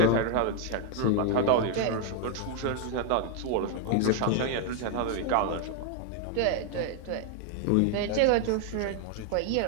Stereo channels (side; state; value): both; different; correlation 0.00